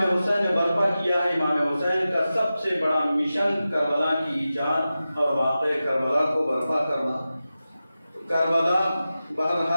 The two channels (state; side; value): inverted; both; correlation -0.94